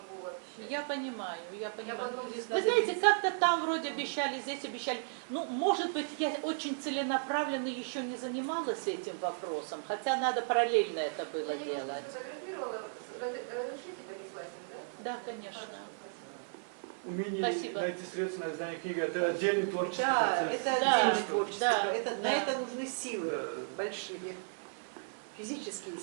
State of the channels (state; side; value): silent; left; 55 dB below the other